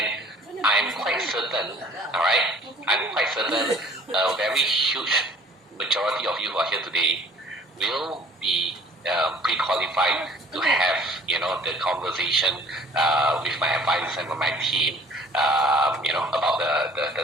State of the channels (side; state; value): both; normal; correlation 0.51